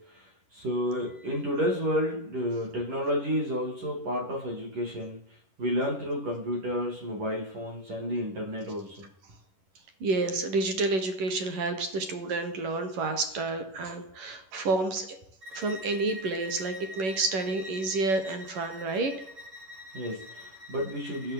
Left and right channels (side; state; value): left; late; 11 ms